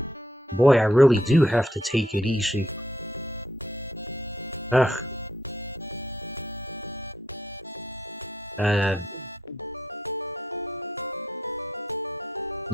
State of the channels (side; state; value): both; normal; correlation 0.75